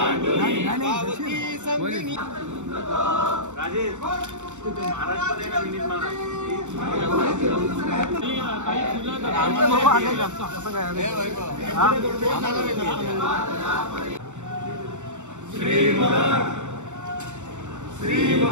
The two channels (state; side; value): late; left; 0.84 ms